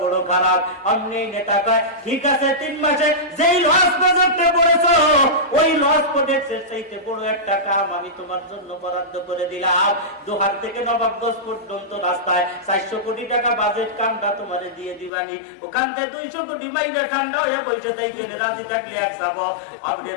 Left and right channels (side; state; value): right; drops out; at 15.1 s